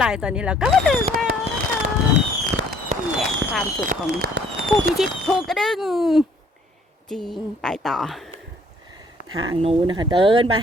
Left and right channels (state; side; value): normal; both; correlation 0.61